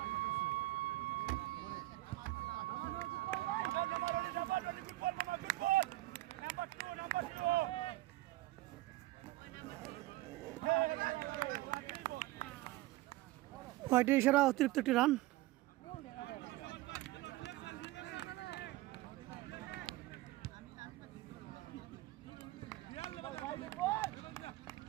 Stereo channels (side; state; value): left; quieter; 17.7 dB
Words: হোয়াইটের ইশারা, অতিরিক্ত একটি রান।